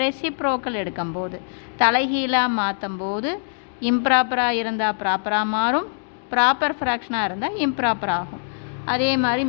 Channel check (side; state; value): right; silent; digital silence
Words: எடுக்கும்போது, தலைகீழாக மாற்றும் போது இம்ப்ராப்பராக இருந்தால் ப்ராப்பராக மாறும், ப்ராப்பர் ஃப்ராக்ஷனாக இருந்தால் இம்ப்ராப்பர் ஆகும். அதே மாதிரி